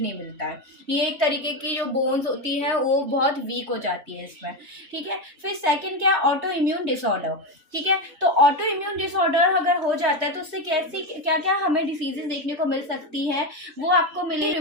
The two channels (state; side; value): late; left; 3.2 ms